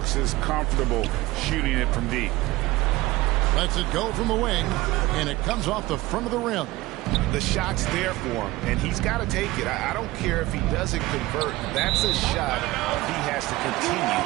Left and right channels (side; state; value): left; quieter; 18.9 dB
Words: is comfortable shooting it from deep. Lets it go from the wing, and it comes off the front of the rim. The shot's there for him, and he's got to take it. I don't care if he doesn't convert. That's a shot he has to continue